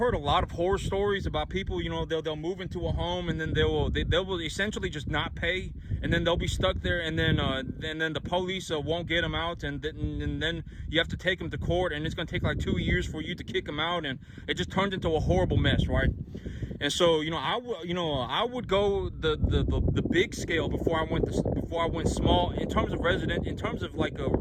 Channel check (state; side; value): identical; both; correlation 1.00